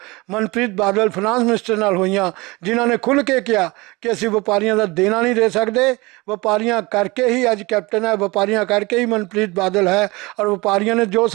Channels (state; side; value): quieter; left; 23.5 dB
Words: ਮਨਪ੍ਰੀਤ ਬਾਦਲ ਫਾਈਨਾਂਸ ਮਿਨਿਸਟਰ ਨਾਲ ਹੋਈਆਂ, ਜਿਨ੍ਹਾਂ ਨੇ ਖੁੱਲ੍ਹ ਕੇ ਕਿਹਾ ਕਿ ਅਸੀਂ ਵਪਾਰੀਆਂ ਦਾ ਦੇਣਾ ਨਹੀਂ ਦੇ ਸਕਦੇ। ਵਪਾਰੀਆਂ ਕਰਕੇ ਹੀ ਅੱਜ ਕੈਪਟਨ ਹੈ, ਵਪਾਰੀਆਂ ਕਰਕੇ ਹੀ ਮਨਪ੍ਰੀਤ ਬਾਦਲ ਹੈ ਔਰ ਵਪਾਰੀਆਂ ਨੇ ਜੋ